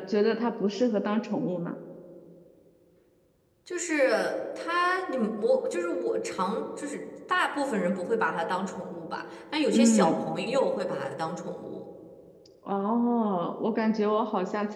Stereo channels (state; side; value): identical; both; correlation 1.00